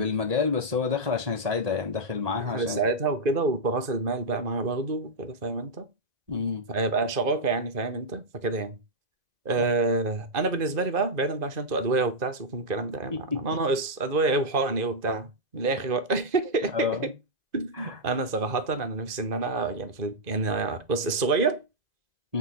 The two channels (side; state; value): left; late; 2.0 ms